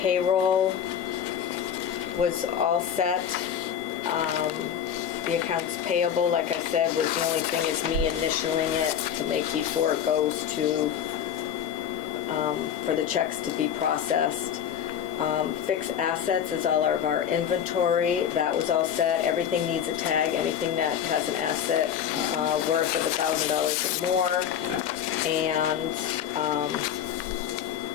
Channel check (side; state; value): right; quieter; 9.0 dB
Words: was all set. The accounts payable, like I said, was the only thing is me initialing it to make before it goes to, for the checks to be processed. Fixed assets is all of our inventory. That was all set. Everything needs a tag. Anything that has an asset worth of $1,000 or more. And